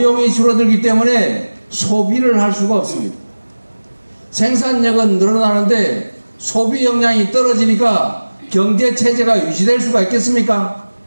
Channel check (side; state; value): both; inverted; correlation -1.00